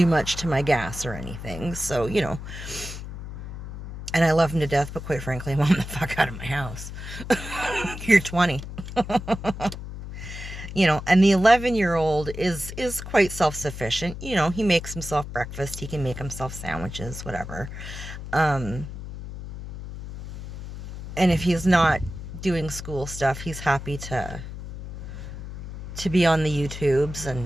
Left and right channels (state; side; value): noise; left; hum, 10 dB below the sound